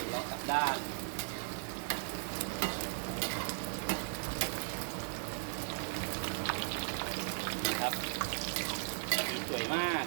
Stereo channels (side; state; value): left; silent; 53 dB below the other